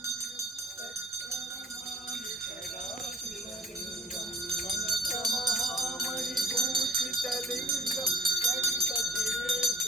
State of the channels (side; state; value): both; normal; correlation 0.43